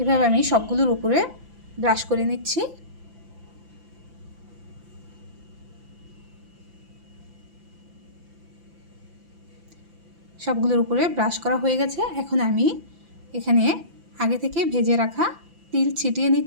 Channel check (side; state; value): left; late; 5.9 ms